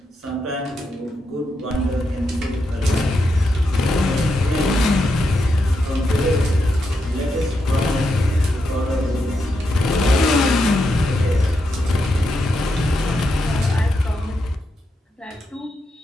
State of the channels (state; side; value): normal; both; correlation 0.84